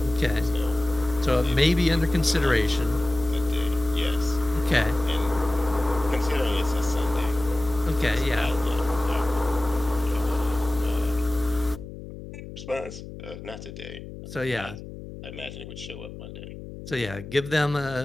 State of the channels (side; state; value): left; noise; hum, 13 dB below the sound